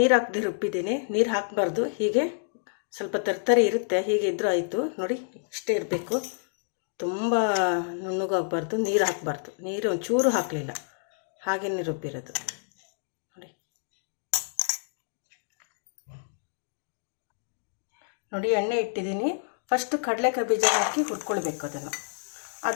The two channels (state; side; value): silent; right; digital silence